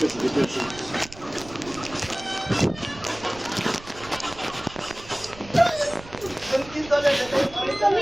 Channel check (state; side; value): noise; right; rumble, 18 dB below the sound